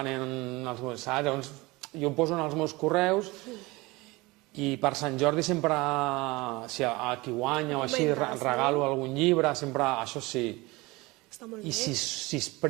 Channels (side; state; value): left; quieter; 22.8 dB